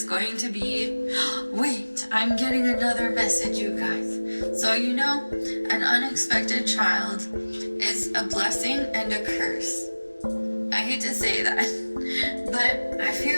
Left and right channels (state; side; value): inverted; both; correlation -1.00